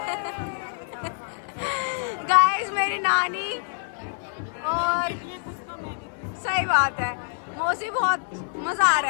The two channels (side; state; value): right; silent; 57 dB below the other